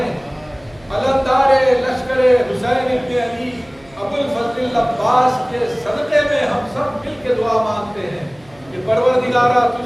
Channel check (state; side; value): noise; right; hum, 28 dB below the sound